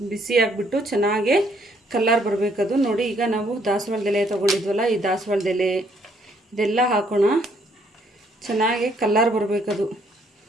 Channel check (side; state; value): both; normal; correlation 0.67